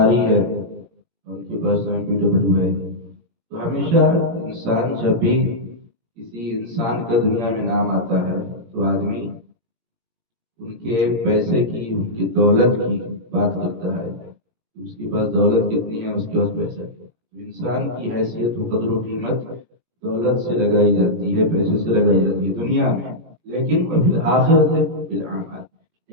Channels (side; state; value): left; late; 17 ms